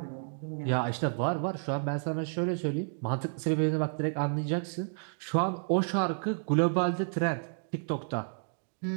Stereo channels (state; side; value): silent; left; digital silence